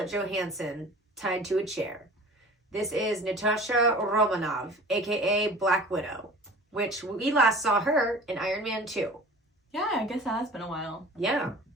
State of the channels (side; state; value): both; normal; correlation 0.42